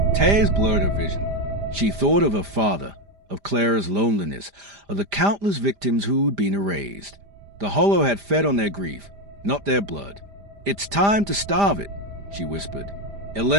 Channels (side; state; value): left; late; 5.0 ms